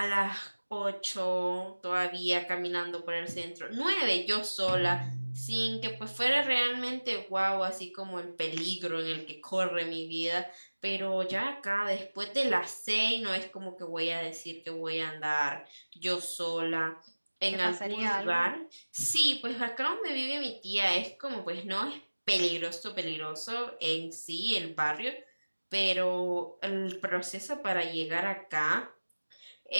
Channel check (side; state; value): both; inverted; correlation -1.00